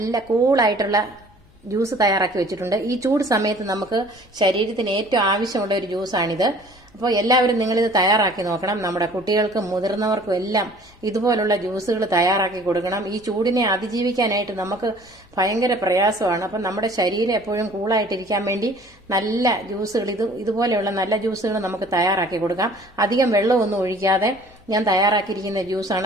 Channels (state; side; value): noise; left; hum, 29 dB below the sound